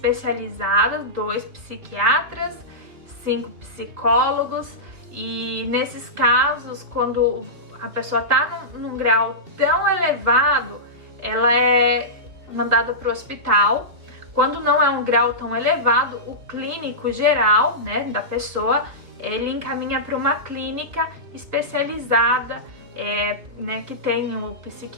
2 psiquiatras, 5 psicólogos, e nesses casos, quando a pessoa está num grau tão elevado, ela é mandada para o hospital. Quando não é um grau tão elevado, o clínico geral, né, da pessoa, ele encaminha para uma clínica especializada, né, que tem o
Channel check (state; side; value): late; left; 2.7 ms